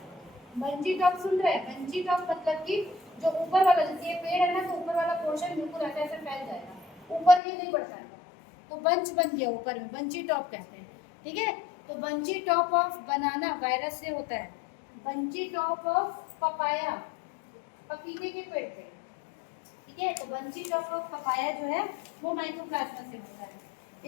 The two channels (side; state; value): right; drops out; at 7.4 s